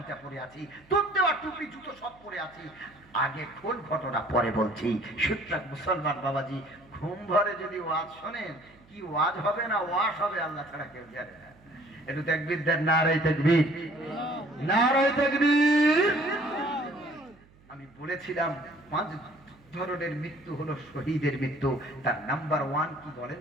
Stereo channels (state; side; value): noise; right; hum, 28 dB below the sound